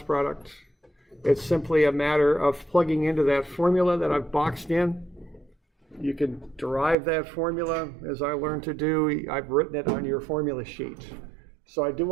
product. It's simply a matter of plugging into that formula that I've boxed in. You can derive that formula, as I learned to do. I've written it on your formula sheet. So I do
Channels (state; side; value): drops out; left; at 7.0 s